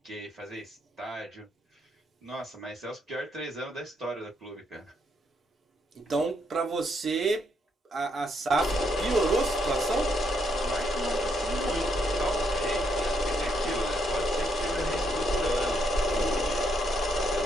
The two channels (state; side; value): normal; both; correlation 0.75